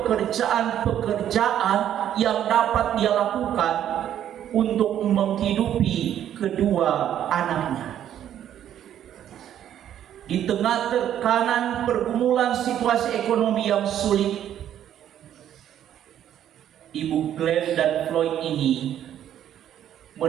yang dapat dia lakukan untuk menghidupi kedua anaknya. Di tengah tekanan pergumulan situasi ekonomi yang sulit, Ibu Glenn dan Floyd ini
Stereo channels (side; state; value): left; quieter; 10.6 dB